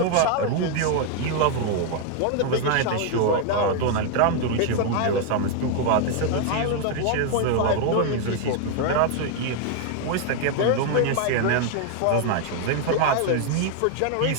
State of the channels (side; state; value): both; different; correlation 0.00